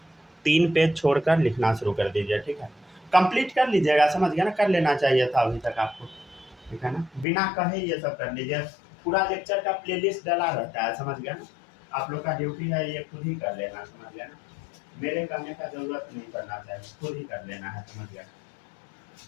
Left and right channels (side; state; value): right; drops out; at 7.2 s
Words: 3 पेज छोड़कर लिखना शुरू कर दीजिए, ठीक है? कंप्लीट कर लीजिएगा, समझ गया ना? कर लेना चाहिए था अभी तक आपको, ठीक है ना? बिना कहे ये सब कर लीजिए। पूरा लेक्चर का प्लेलिस्ट डला रहता है, समझ गया ना? आप लोग का ड्यूटी है ये खुद ही कर लेना, समझ गया ना? मेरे करने का जरूरत नहीं पड़ना चाहिए, खुद ही कर लेना है, समझ गया?